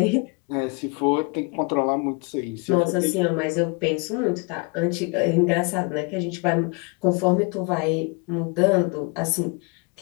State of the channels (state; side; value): quieter; right; 30.2 dB